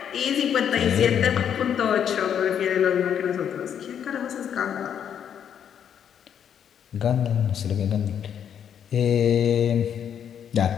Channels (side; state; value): right; quieter; 8.6 dB